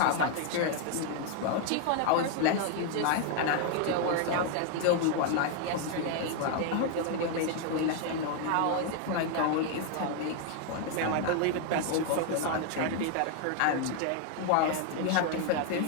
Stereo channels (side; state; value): both; different; correlation 0.00